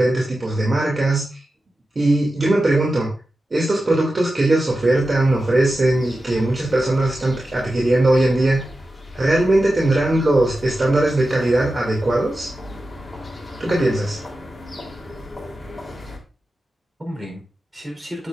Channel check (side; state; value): both; normal; correlation 0.93